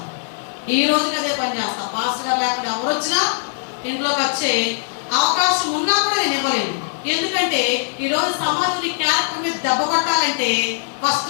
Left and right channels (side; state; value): right; silent; digital silence